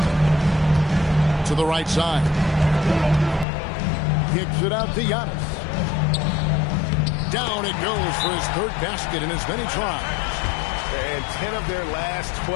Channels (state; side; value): drops out; right; at 3.5 s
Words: To the right side. Kicks it out to Giannis. Down it goes for his third basket in as many tries. And 10 of their last